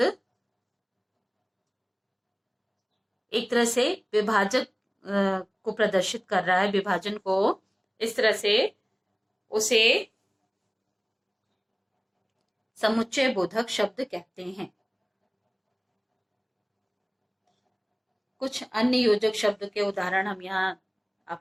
एक तरह से विभाजक को प्रदर्शित कर रहा है, विभाजन को। इस तरह से उसे समुच्चय बोधक शब्द कहते हैं। कुछ अन्य योजक शब्द के उदाहरण हम यहाँ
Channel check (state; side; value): identical; both; correlation 1.00